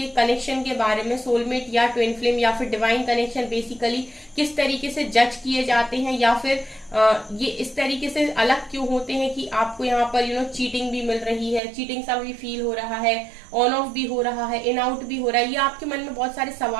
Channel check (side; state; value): left; drops out; at 11.6 s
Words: कनेक्शन के बारे में, सोलमेट या ट्विन फ्लेम या फिर डिवाइन कनेक्शन बेसिकली किस तरीके से जज किए जाते हैं, या फिर ये इस तरीके से अलग क्यों होते हैं कि आपको यहाँ पर चीटिंग भी मिल रही है, चीटिंग सा भी फील हो रहा है, ऑन ऑफ भी हो रहा है, इन आउट भी हो रहा है, ये आपके मन में बहुत सारे